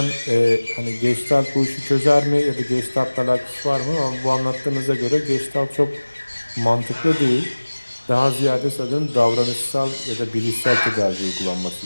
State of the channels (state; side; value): inverted; both; correlation -1.00